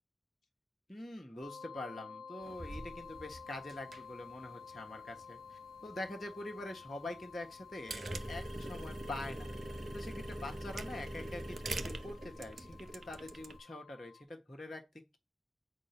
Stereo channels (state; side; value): normal; both; correlation 0.89